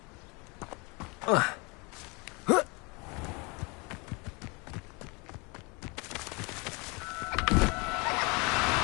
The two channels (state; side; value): quieter; right; 28.9 dB